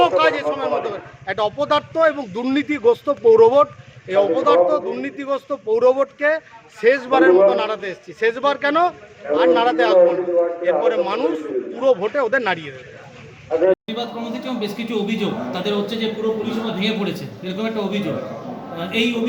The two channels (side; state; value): both; identical; correlation 1.00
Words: কাজ এই সময়ের মধ্যে করে। একটা অপদার্থ এবং দুর্নীতিগ্রস্ত পৌরবোর্ড, এই অপদার্থ দুর্নীতিগ্রস্ত পৌরবোর্ডকে শেষবারের মতো নাড়াতে এসেছি। শেষবার কেন, আর নাড়াতে আসবো না। এরপরে মানুষ পুরো ভোটে ওদের নাড়িয়ে দেবে। প্রতিবাদ কর্মসূচি এবং বেশ কিছু অভিযোগ তাদের হচ্ছে যে পুরো পরিষেবা ভেঙে পড়েছে, এরকম একটা অভিযোগ। এই